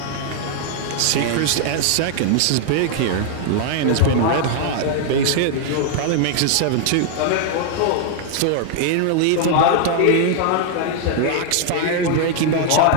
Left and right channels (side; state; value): both; different; correlation 0.00